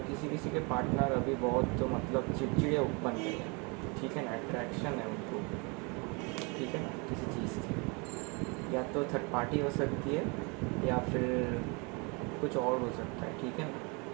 किसी किसी के पार्टनर अभी बहुत मतलब चिड़चिड़े बन गए हैं, ठीक है ना। अट्रैक्शन है उनको, ठीक है ना, किसी चीज़ की, या तो थर्ड पार्टी हो सकती है या फिर कुछ और हो सकता है, ठीक है ना।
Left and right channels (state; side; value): quieter; left; 30.8 dB